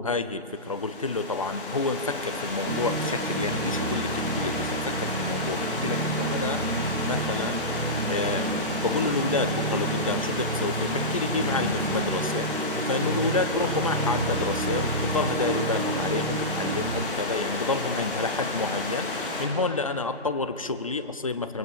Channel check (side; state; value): both; normal; correlation -0.13